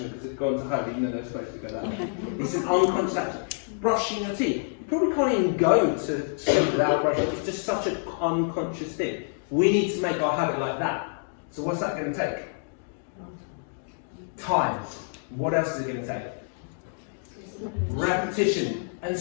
because it's gone to home even though they're supposed to go that way? It's an unconscious action. Brushing your teeth. You probably can't even go to sleep without brushing. It's just such an unconscious thing. We need to make our habit like that. So what's that going to take? Time. What else is it going to take? Repetition. And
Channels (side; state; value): right; silent; digital silence